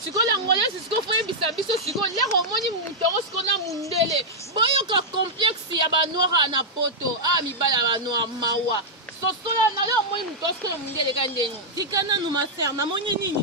Siko l'angolaise siko foye bisabiso siko lero moni mutango siko na mundele. Boyoka complexe ya ba noir na poto. Ah mibala ba noir mawa. Sosola na leo moni mutosko na mundele kandeni. Tikana no ma sœur, na moni nini?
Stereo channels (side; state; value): both; normal; correlation -0.05